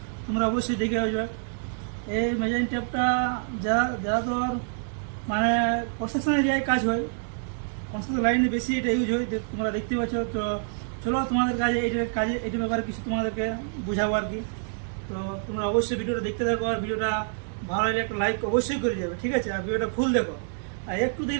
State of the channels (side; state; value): left; silent; digital silence